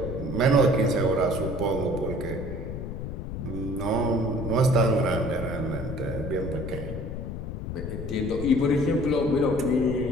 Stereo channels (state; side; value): noise; left; rumble, 6 dB below the sound